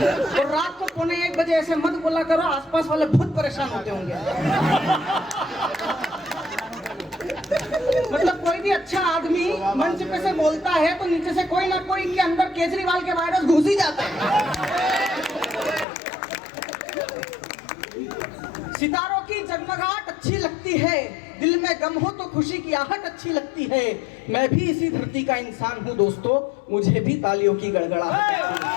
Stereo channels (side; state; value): right; drops out; at 15.9 s